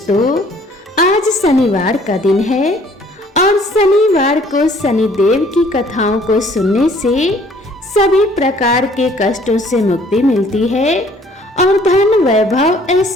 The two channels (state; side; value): normal; both; correlation 0.58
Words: आज शनिवार का दिन है और शनिवार को शनिदेव की कथाओं को सुनने से सभी प्रकार के कष्टों से मुक्ति मिलती है और धन वैभव